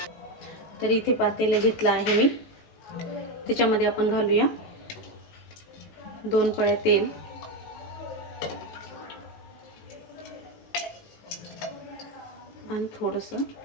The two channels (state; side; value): late; right; 19 ms